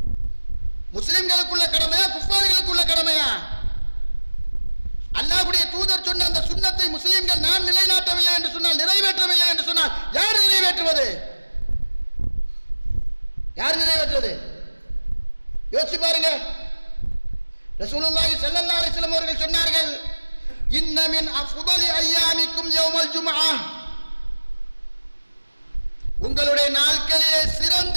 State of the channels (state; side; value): inverted; both; correlation -1.00